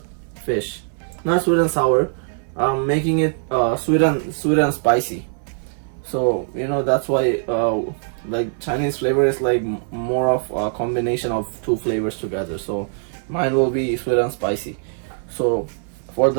fish. Not sweet and sour. I'm making it sweet and spicy. So you know, that's why like Chinese flavor is like more of a combination of two flavors together. So mine will be sweet and spicy. So for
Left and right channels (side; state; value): left; silent; 59 dB below the other